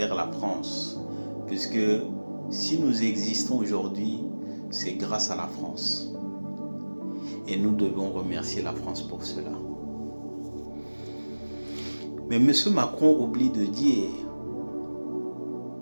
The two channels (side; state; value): both; inverted; correlation -1.00